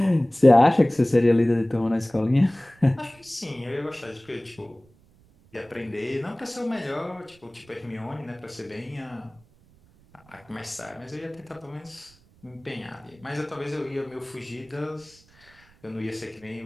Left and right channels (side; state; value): right; noise; rumble, 29 dB below the sound